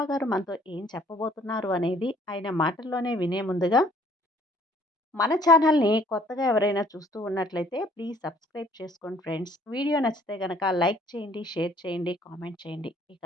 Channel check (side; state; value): both; normal; correlation 0.59